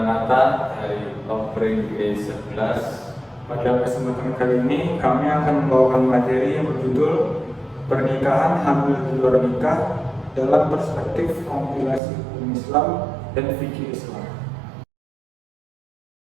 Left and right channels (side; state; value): left; drops out; at 12.0 s